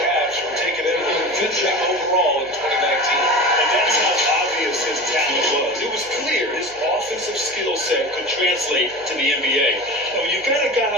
from taking him 5th overall in 2019. And that's how obvious his talent was. It was clear his offensive skill set could translate to the NBA. Now, when you've got a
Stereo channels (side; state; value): right; noise; hum, 27 dB below the sound